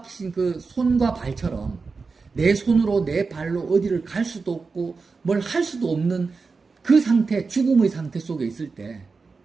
그 손과 발처럼 내 손으로 내 발로 어디를 갈 수도 없고 뭘 할 수도 없는 그 상태, 죽음의 상태 속에 있을 때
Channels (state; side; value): quieter; left; 4.5 dB